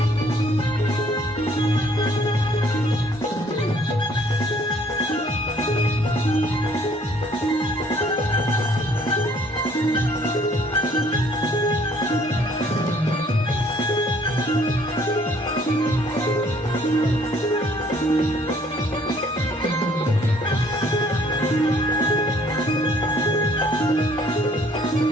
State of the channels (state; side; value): normal; both; correlation 0.61